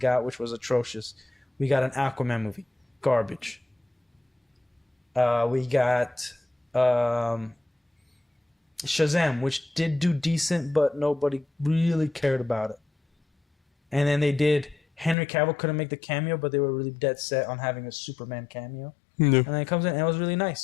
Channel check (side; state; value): right; drops out; at 15.2 s